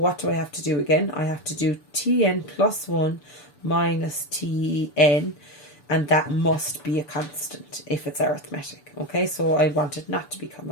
do I have to do again? I have to do Tn plus 1 minus Tn, and that must be a constant if it's arithmetic. Okay, so I want it not to become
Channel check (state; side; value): late; right; 6.9 ms